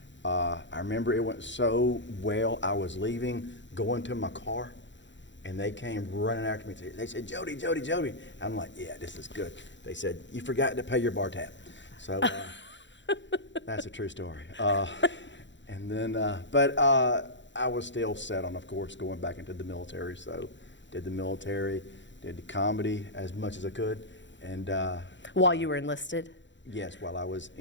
I remember it went so well, I was leaving, going to my car, and they came running after me. They said, Jody, Jody, Jody. I'm like, yeah, this is good. They said, you forgot to pay your bar tab. So that's a true story. And then, but I was still set on, of course, going back into the military. So did the military, did the comedy as much as I could. And while you were enlisted? Yes, while I was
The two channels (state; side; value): late; right; 0.53 ms